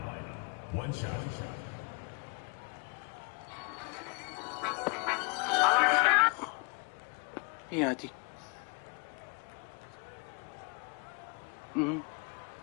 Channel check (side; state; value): right; quieter; 33.7 dB